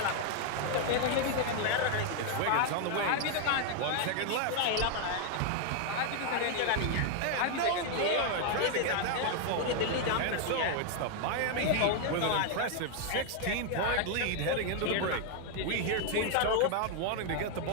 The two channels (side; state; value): both; different; correlation 0.00